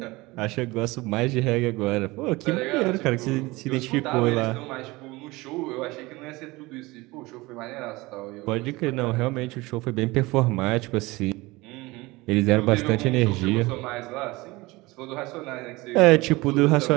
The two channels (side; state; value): left; quieter; 21.8 dB